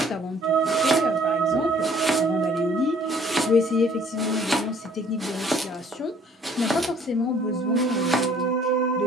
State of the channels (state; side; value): normal; both; correlation 0.58